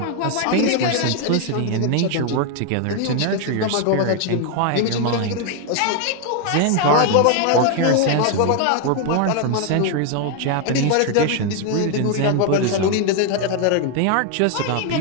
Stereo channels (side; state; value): both; different; correlation 0.01